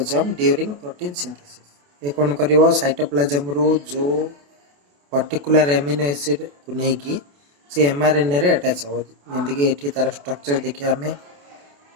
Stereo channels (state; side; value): late; left; 28 ms